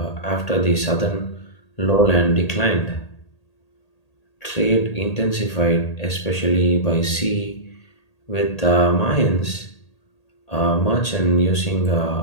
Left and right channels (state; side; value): late; right; 1.8 ms